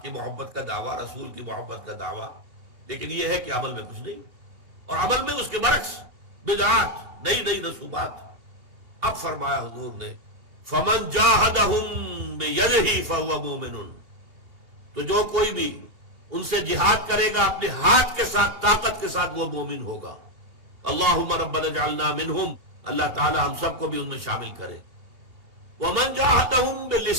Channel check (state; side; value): late; left; 2.9 ms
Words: کی محبت کا دعویٰ، رسول کی محبت کا دعویٰ، لیکن یہ ہے کہ عمل میں کچھ نہیں، اور عمل میں اس کے برعکس بدعات، نئی نئی رسومات۔ اب فرمایا حضور نے فَمَنْ جَاهَدَهُمْ بِيَدِهِ فَهُوَ مُؤْمِنٌ، تو جو کوئی بھی ان سے جہاد کرے گا اپنے ہاتھ کے ساتھ، طاقت کے ساتھ، وہ مومن ہوگا۔ اللہم ربنا اجعلنا منہم، اللہ تعالی ہم سب کو بھی ان میں شامل کرے۔ ومن جاہدہم